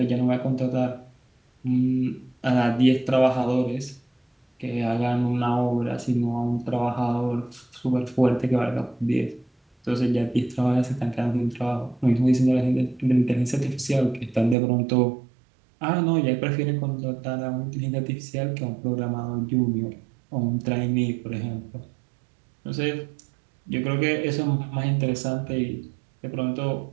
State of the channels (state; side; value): drops out; left; at 14.6 s